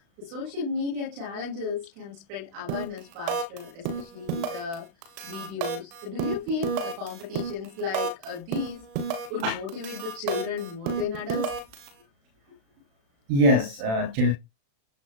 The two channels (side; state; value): left; late; 36 ms